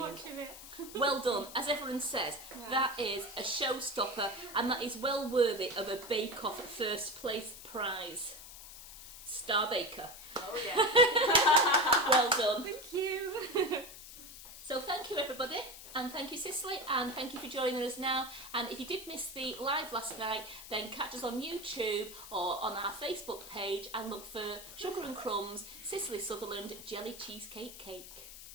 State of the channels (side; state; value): left; noise; hiss, 14 dB below the sound